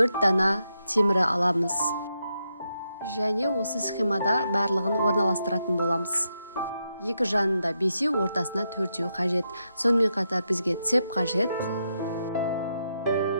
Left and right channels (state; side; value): inverted; both; correlation -0.83